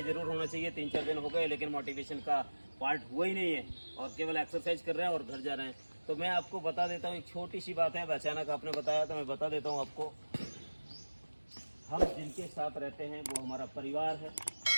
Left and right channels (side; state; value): both; inverted; correlation -1.00